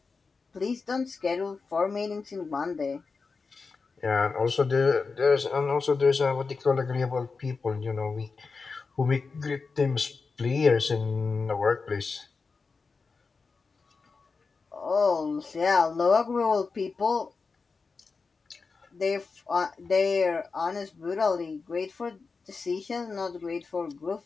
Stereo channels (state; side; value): quieter; right; 4.6 dB